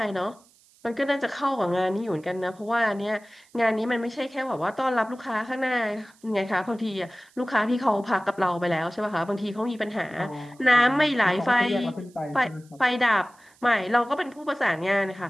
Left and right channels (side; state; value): right; noise; hiss, 30 dB below the sound